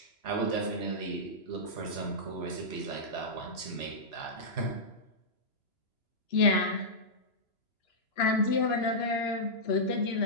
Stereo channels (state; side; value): late; right; 3.0 ms